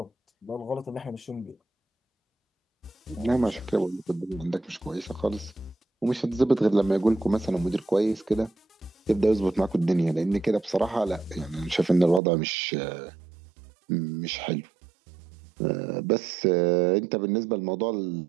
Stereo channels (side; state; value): left; drops out; at 12.2 s